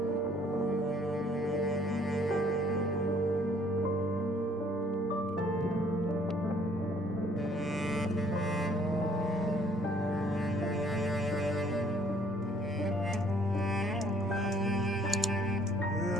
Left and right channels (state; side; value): normal; both; correlation 0.61